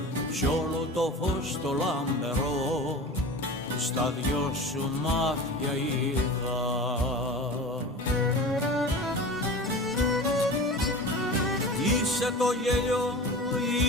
κι όλο το φως το λαμπερό στα δυο σου μάτια είδα. Είσαι το γέλιο,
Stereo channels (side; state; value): both; normal; correlation 0.34